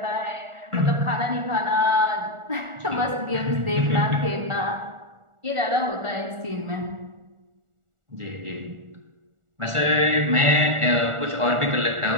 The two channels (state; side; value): late; left; 1.4 ms